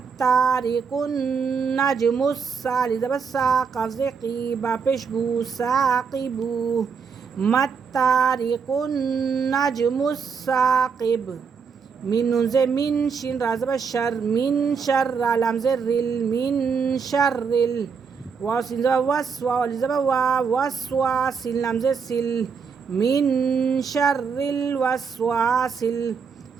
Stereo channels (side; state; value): left; quieter; 5.8 dB